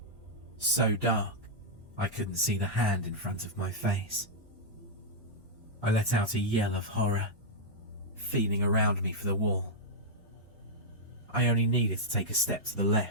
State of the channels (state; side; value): normal; both; correlation -0.07